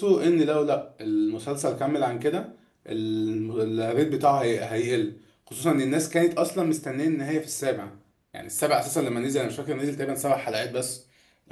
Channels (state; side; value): identical; both; correlation 1.00